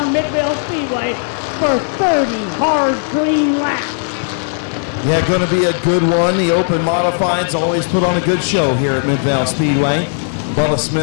Midvale Speedway for 30 hard green laps. Yeah, going to be a good one. The open modifieds always put on a good show here at Midvale Speedway. Bubba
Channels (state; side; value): silent; right; digital silence